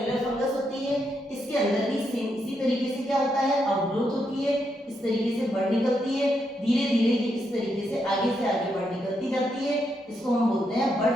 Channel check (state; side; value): normal; both; correlation 0.80